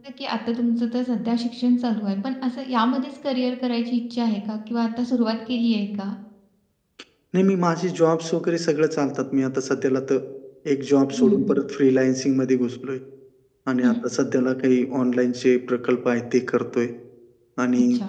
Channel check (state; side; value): identical; both; correlation 1.00